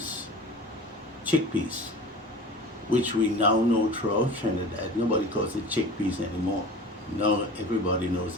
chickpeas, which we now know throughout Trinidad. Nobody calls it chickpeas anymore. Now everybody knows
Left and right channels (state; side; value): normal; both; correlation 0.38